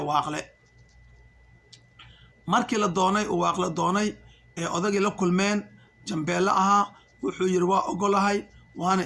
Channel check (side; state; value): both; identical; correlation 1.00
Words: waaqle. markii la doonay uu waaqle doonay ee odagii la kulmeen jambeelle ahaa, wuxuu yidhi waa ogolahay, waana